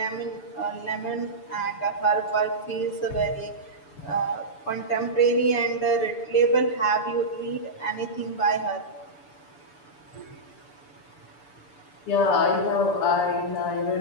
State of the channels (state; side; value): late; right; 6.9 ms